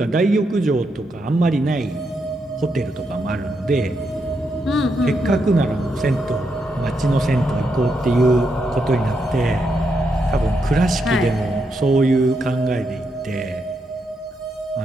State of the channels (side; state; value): both; normal; correlation 0.81